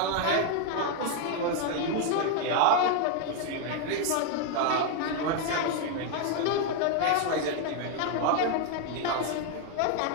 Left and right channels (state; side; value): different; both; correlation 0.00